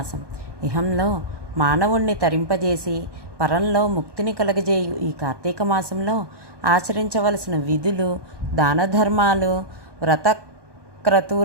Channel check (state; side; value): late; left; 1.2 ms